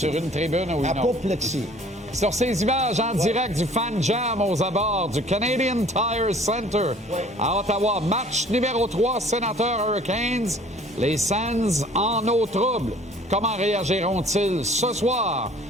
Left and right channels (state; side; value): normal; both; correlation 0.53